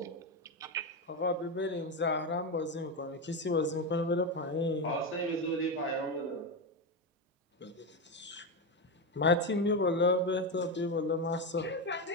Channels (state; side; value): normal; both; correlation 0.12